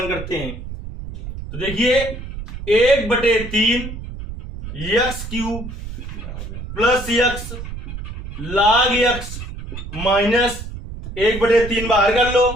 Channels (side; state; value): right; noise; rumble, 9 dB below the sound